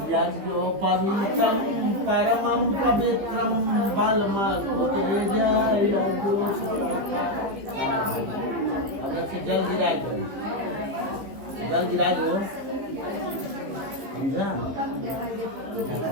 जो पवित्रम परमं पवित्रम बलमल जल गिरा दो, समझा?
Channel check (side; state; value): left; late; 15 ms